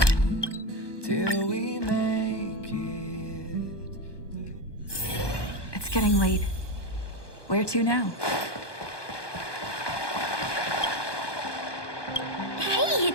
till we make it. It's getting late. Where to now? Hey,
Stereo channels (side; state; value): right; late; 1.2 ms